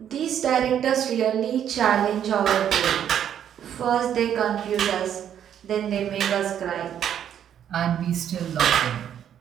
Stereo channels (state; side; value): quieter; left; 9.6 dB